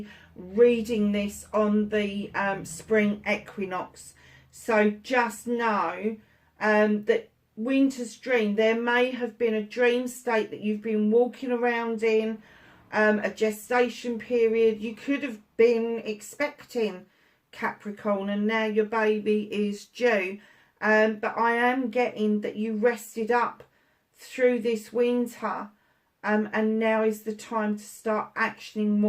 reading this on the spring equinox. So just know that Winter's Dream, there may have been a dream state that you've been walking around in, a gestation period. You could have been expecting, Capricorn, and now your baby is due. But I am getting that you rested up through this winter, and now is the time to start actioning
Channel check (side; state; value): both; identical; correlation 1.00